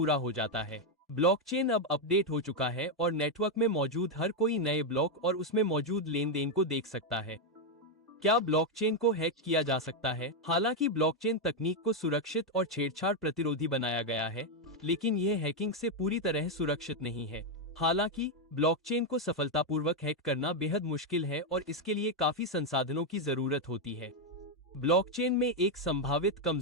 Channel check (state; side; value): normal; both; correlation 0.03